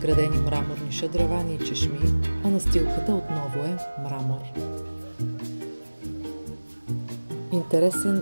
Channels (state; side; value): inverted; both; correlation -1.00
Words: мраморни шадравани и чешми, а настилката отново е мрамор.